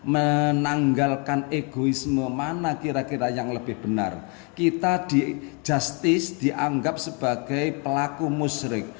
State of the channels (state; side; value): quieter; right; 34.1 dB